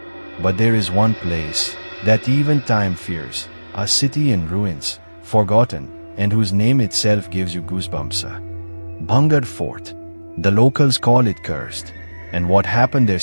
But there is one place that even time fears, a city in ruins, forgotten, and whose name itself gives you goosebumps. Bhangarh Fort. The locals call it cursed, and what happened there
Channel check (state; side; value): inverted; both; correlation -1.00